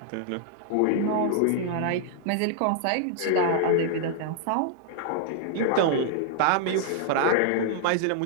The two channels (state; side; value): different; both; correlation -0.01